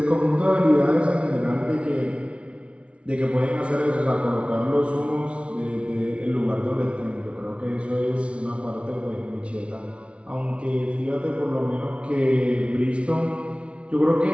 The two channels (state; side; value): late; left; 0.060 ms